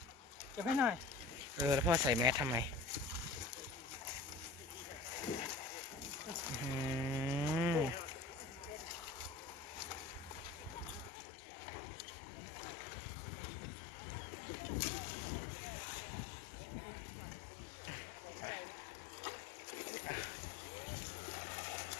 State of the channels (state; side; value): drops out; right; at 11.1 s